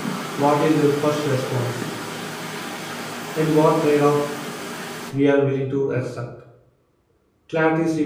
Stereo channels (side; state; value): both; identical; correlation 1.00